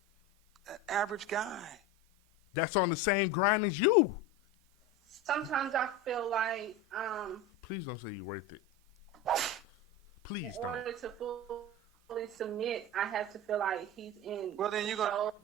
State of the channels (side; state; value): both; normal; correlation 0.25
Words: an average guy? That's on the same grind as you. Sometimes I feel like Please don't say you're worth it. Please in don't. order to fully submit, I have to feel like he's in. Well, then you're